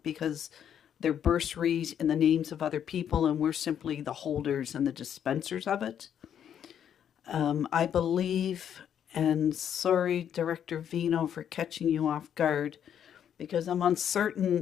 because they're bursaries in the names of other people and we're simply the holders and the dispensers of it. I believe, and sorry, Director Vino, for catching you off guard, because I'm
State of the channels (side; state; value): right; quieter; 9.2 dB